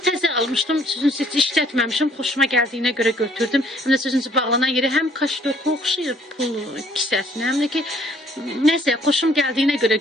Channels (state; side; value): normal; both; correlation 0.62